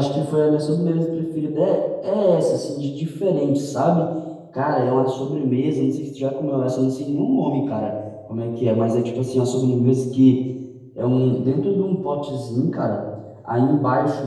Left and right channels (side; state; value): both; identical; correlation 1.00